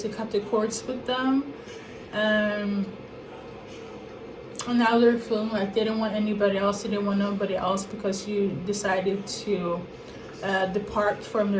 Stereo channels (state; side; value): identical; both; correlation 1.00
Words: cut the cords with them, and now they're feeling like they didn't want anybody else, they didn't want nobody else because you decided to depart from